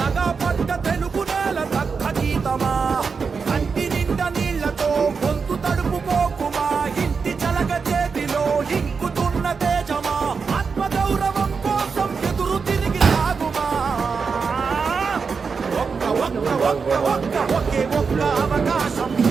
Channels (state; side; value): quieter; left; 5.3 dB